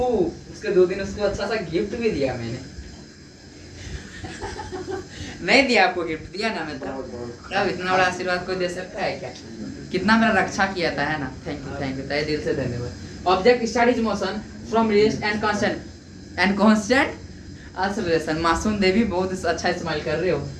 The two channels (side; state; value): both; identical; correlation 1.00